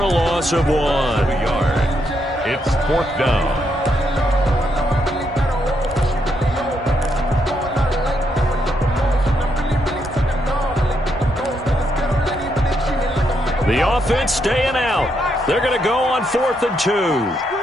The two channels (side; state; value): both; normal; correlation 0.78